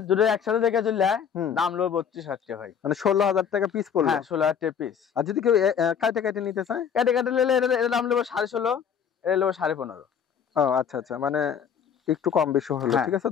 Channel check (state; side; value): quieter; right; 7.6 dB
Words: যদি একসাথে দেখে চললে হুম। দাম লো 32,000 টাকা ভাই। মানে 16,000 টাকা পিস পড়লো? হ্যাঁ 16,000 টাকা পিস। আর যদি কেউ কাটে কাটে নিতে চায়? কেটে কেটে নিলে এটা দাম নেবো 16,500, এটা নেবো 15,500। ও আচ্ছা আচ্ছা, মানে একটু কম বেশি হলো, হ্যাঁ। ঠিক আছে